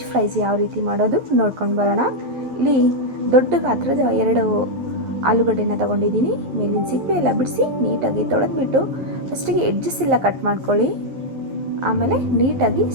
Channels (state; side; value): late; left; 11 ms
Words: ಫ್ರೈಸ್ ಯಾವ ರೀತಿ ಮಾಡೋದು ನೋಡ್ಕೊಂಡು ಬರೋಣ. ಇಲ್ಲಿ ದೊಡ್ಡ ಗಾತ್ರದ 2 ಆಲೂಗಡ್ಡೆನ ತೊಗೊಂಡಿದ್ದೀನಿ. ಮೇಲಿನ ಸಿಪ್ಪೆ ಎಲ್ಲ ಬಿಡಿಸಿ ನೀಟಾಗಿ ತೊಳೆದ್ಬಿಟ್ಟು ಫಸ್ಟಿಗೆ ಎಡ್ಜಸ್ ಎಲ್ಲ ಕಟ್ ಮಾಡ್ಕೊಳ್ಳಿ. ಆಮೇಲೆ ನೀಟಾಗಿ